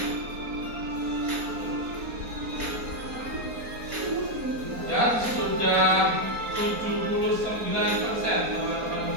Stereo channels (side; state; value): left; late; 4.3 ms